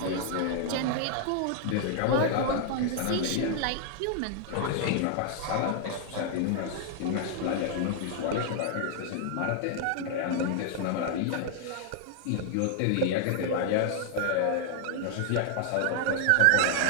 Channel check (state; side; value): different; both; correlation 0.00